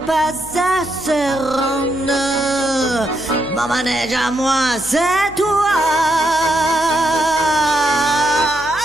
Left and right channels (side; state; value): left; noise; hum, 19 dB below the sound